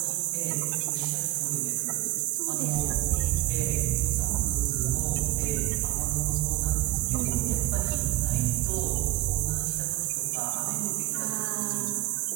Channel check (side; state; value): left; quieter; 17.1 dB